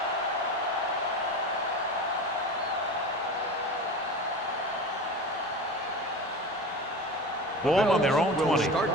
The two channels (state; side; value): normal; both; correlation 0.31